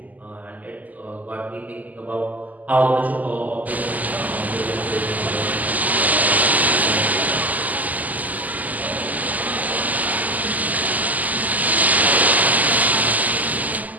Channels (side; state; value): left; late; 0.079 ms